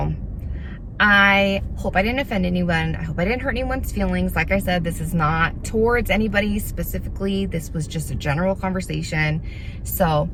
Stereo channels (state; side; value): identical; both; correlation 1.00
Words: I hope I didn't offend anyone. I hope I didn't hurt anyone's feelings. Like I said, this is not towards anybody specifically. This was just a general conversation. So